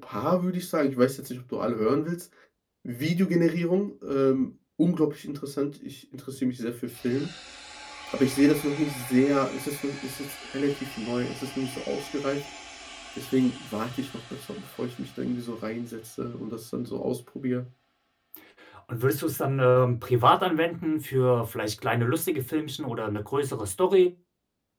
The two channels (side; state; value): both; identical; correlation 1.00